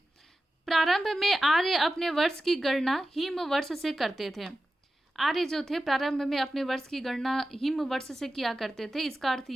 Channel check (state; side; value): normal; both; correlation 0.93